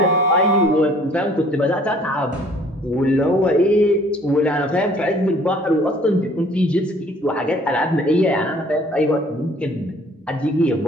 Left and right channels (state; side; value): normal; both; correlation 0.56